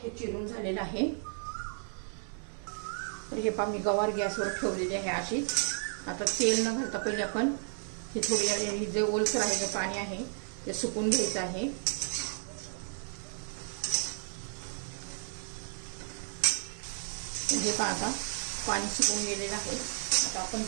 हे चिरून झालेलं आहे. तर हे पहा, मी गवार गॅसवर ठेवलेली आहे अशीच. आता तेल न घालता पहिले आपण हे थोडी जे ओलसर आहे, जे पाणी आहे ते सुकून घ्यायचं आहे. हे पहा, आता पाणी सुकून गेलेलं आहे. आता आपण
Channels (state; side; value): silent; left; 56 dB below the other